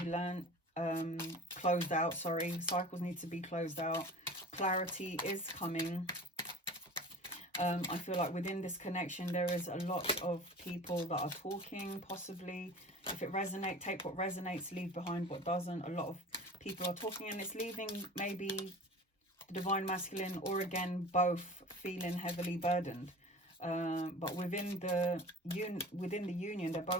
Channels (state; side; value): normal; both; correlation 0.39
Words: learnt, closed out, sorry. Cycles need to be closed out. Clarity is coming. I feel like within this connection, there is a lot of people that are talking, possibly. If it resonates, take what resonates, leave behind what doesn't. A lot of people are talking, and it's leaving maybe the divine masculine, or again, both feeling heavily burdened. But within the union, they're